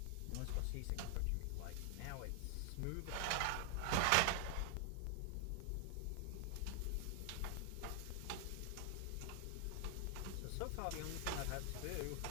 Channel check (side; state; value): both; different; correlation 0.00